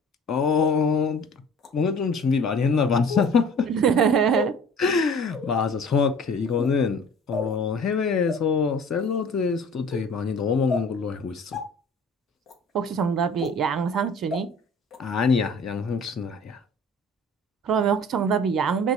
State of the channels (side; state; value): both; normal; correlation 0.46